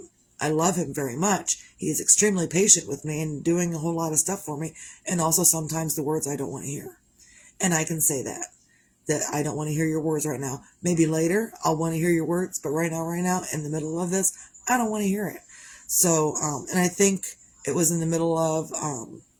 I love him very much. He is extremely patient with me and doing a whole lot of stuff for me. And also sometimes the words I don't want to hear. And I can say that I don't want to hear your words right now. Maybe later I'll want to hear your words, but right now, in the middle of this, I don't want to hear it. So, and I think it was in the middle of,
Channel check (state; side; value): identical; both; correlation 1.00